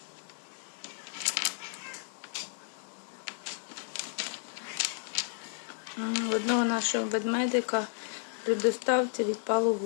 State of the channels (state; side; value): silent; right; 56 dB below the other